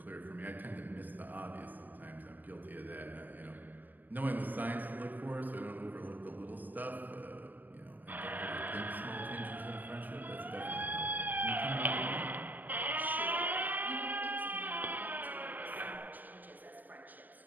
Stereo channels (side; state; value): left; late; 0.088 ms